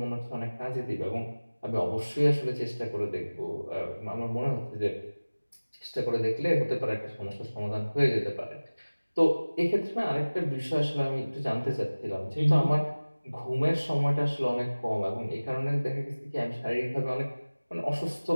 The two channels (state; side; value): inverted; both; correlation -1.00